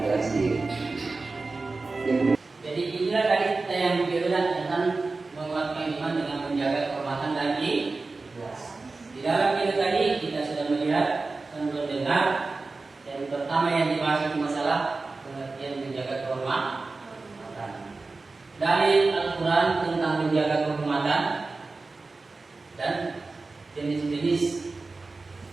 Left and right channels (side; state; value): left; quieter; 3.7 dB